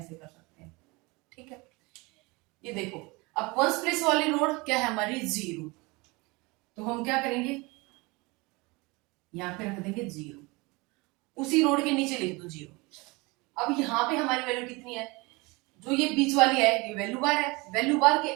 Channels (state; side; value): quieter; left; 25.4 dB